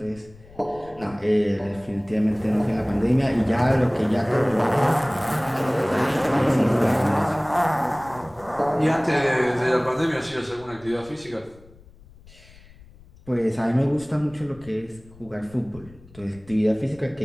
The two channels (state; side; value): noise; left; rumble, 23 dB below the sound